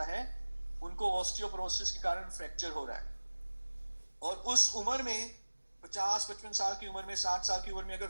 है, उनको ऑस्टियोपोरोसिस के कारण फ्रैक्चर हो रहा है। और उस उम्र में 50-55 साल की उम्र में, 60 साल की उम्र में अगर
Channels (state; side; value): inverted; both; correlation -1.00